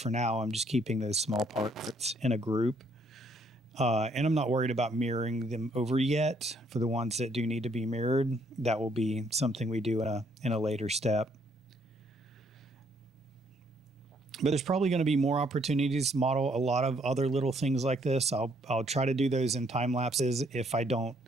now I'm just keeping those small parts in a group. And I'm not worried about mirroring them over yet. For the ones that do need to be mirrored, that will be something we do in a later step. But there's probably going to be more opportunities to model a lot of other little things like this. I'll try to do those in time lapses if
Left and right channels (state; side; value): normal; both; correlation 0.68